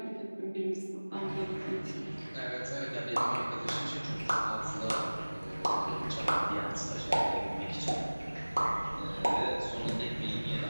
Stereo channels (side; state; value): both; inverted; correlation -1.00